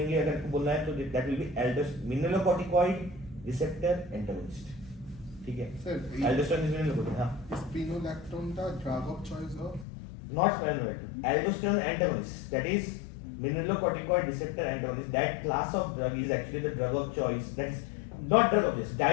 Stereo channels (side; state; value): right; drops out; at 9.9 s